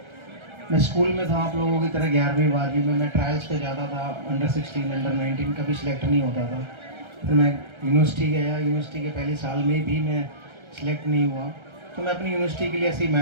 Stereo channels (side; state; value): left; late; 1.3 ms